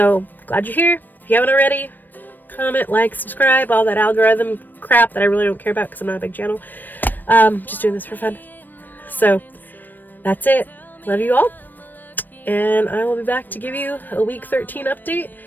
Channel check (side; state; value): right; late; 0.090 ms